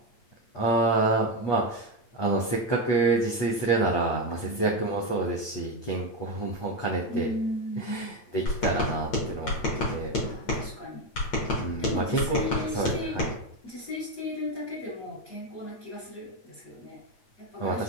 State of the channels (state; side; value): late; right; 8.8 ms